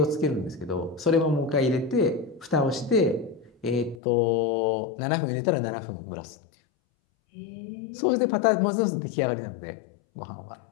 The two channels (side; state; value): right; drops out; at 4.0 s